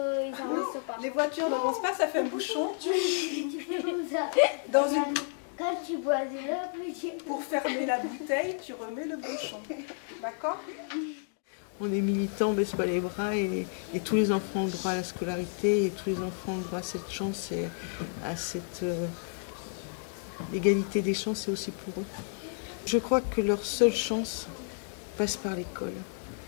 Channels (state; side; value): silent; right; 57 dB below the other